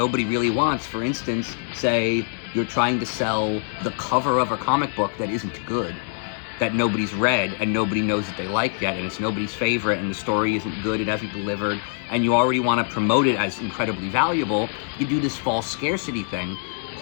really wants, for instance, say you're trying to sell the cover of a comic book that isn't good, that nobody's read and nobody knows that they like yet, and it's nobody's favorite, and the story isn't good, it hasn't delivered, and you already want to promote it as incredibly valuable, you do this false scarcity thing.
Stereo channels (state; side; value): silent; right; 59 dB below the other